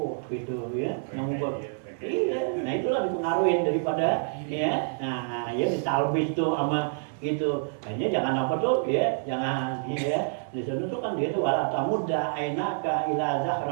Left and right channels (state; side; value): silent; left; 60 dB below the other